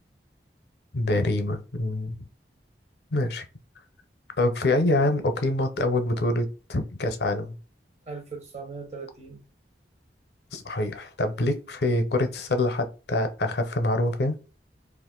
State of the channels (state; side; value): normal; both; correlation 0.52